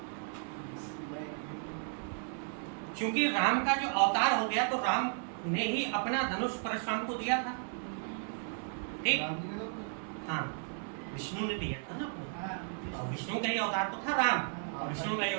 क्योंकि राम का जो अवतार हो गया तो राम ने ही अपना धनुष परशुराम को दिया था। ठीक। हाँ, विष्णु ने दिया था ना अपने, तो विष्णु का ही अवतार तो था राम, और विष्णु का ही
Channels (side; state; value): left; silent; 55 dB below the other